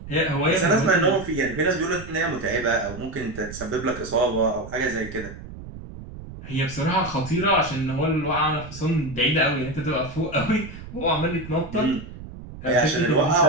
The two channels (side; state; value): right; noise; rumble, 13 dB below the sound